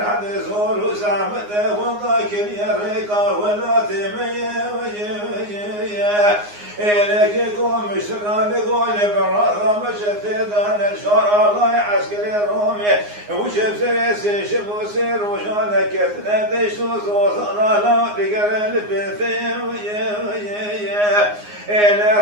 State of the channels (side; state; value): left; late; 9.6 ms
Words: حد زور زعمته وضاكر يا ريقا ولا تمية إليك قوم مشران قول برا مشت دان الشارع الله عسكري رومي وشف سريسي شفو سير وشان كتنا دشو زوزانا لا تقر البثيم إلى